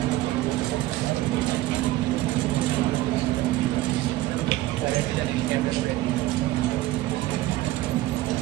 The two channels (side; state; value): left; quieter; 16.6 dB